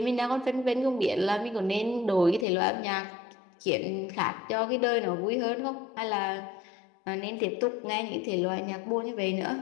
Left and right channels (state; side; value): drops out; right; at 2.5 s